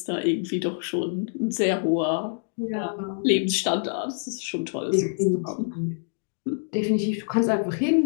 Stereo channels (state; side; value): silent; right; digital silence